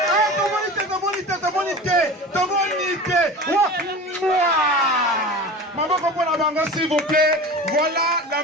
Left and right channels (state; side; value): normal; both; correlation 0.34